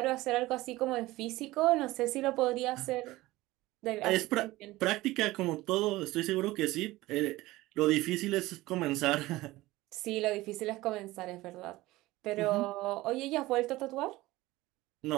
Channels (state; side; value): quieter; left; 18.5 dB